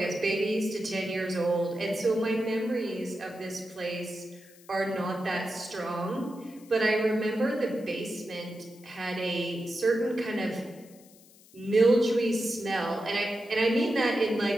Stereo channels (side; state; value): left; noise; hiss, 25 dB below the sound